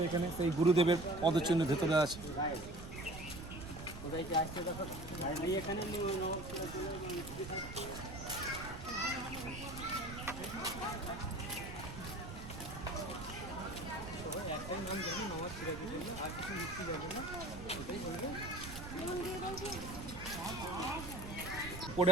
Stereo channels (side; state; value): right; noise; rumble, 10 dB below the sound